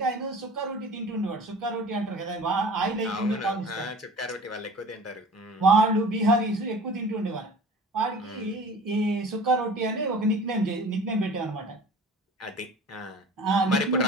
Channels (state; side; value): normal; both; correlation 0.42